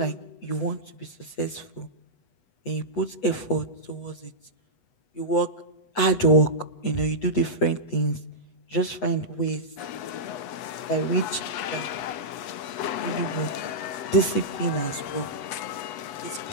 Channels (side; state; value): right; late; 8.1 ms